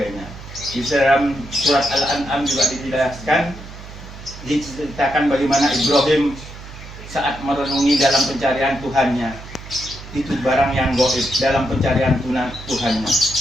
Di dalam surat Al-An'am juga diceritakan bagaimana Ibrahim saat merenungi dalam pencarian Tuhannya, itu barang yang gaib dalam pencarian Tuhannya.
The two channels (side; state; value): right; noise; hum, 15 dB below the sound